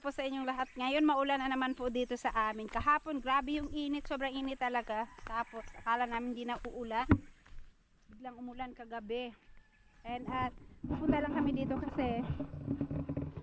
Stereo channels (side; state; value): both; identical; correlation 1.00